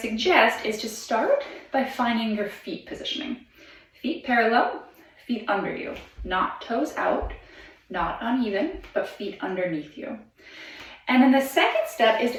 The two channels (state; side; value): identical; both; correlation 1.00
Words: is to start by finding your feet positioning. Feet parallel, feet under you, not toes out, not uneven, but feet underneath you. And then the second step is